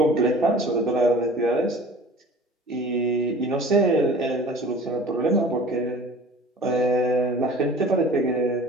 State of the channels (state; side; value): normal; both; correlation 0.44